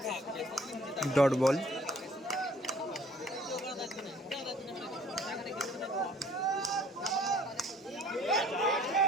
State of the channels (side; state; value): both; normal; correlation 0.54